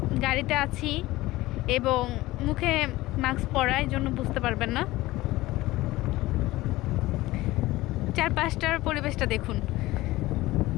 গাড়িতে আছি এবং মুখে মাস্ক পরা, এই জন্য বুঝতে পারবেন না। চারপাশটার পরিবেশটা দেখুন।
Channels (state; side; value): quieter; right; 18.2 dB